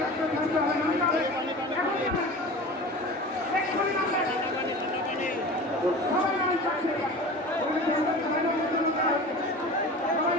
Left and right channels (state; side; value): normal; both; correlation 0.36